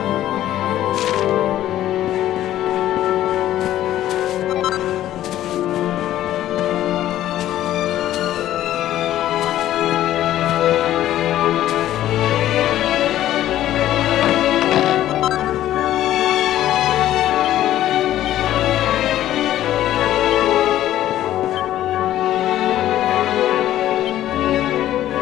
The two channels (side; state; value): right; quieter; 13.1 dB